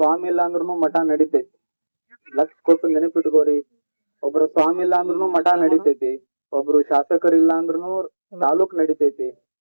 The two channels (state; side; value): inverted; both; correlation -1.00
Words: ಇಲ್ಲ ಅಂದ್ರೂ ಮಠ ನಡಿತೈತಿ. ಲಕ್ಷ ಕೊಟ್ಟು ನೆನಪಿಟ್ಕೋರಿ, ಒಬ್ರು ಸ್ವಾಮಿ ಇಲ್ಲ ಅಂದ್ರೂ ಮಠ ನಡಿತೈತಿ, ಒಬ್ರು ಶಾಸಕರಿಲ್ಲ ಅಂದ್ರೂ ತಾಲೂಕ್ ನಡಿತೈತಿ,